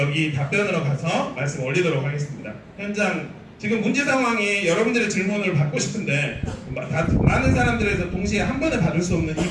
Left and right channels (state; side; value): identical; both; correlation 1.00